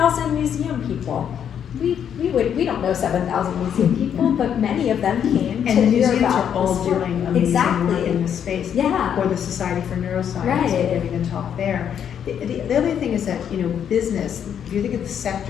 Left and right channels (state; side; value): quieter; right; 8.7 dB